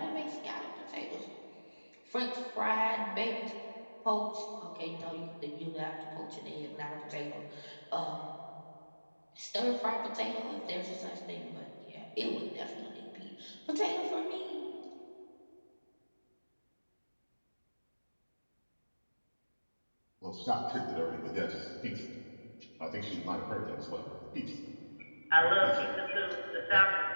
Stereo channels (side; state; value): both; inverted; correlation -1.00